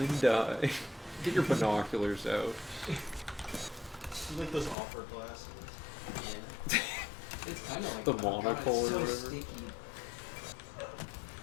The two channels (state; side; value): drops out; right; at 4.8 s